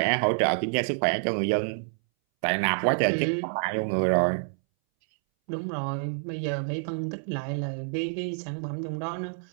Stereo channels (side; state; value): left; silent; 60 dB below the other